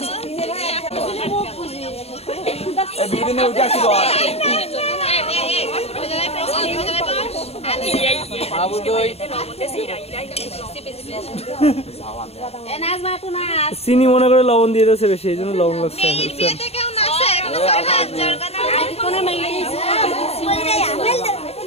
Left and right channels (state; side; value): late; right; 0.30 ms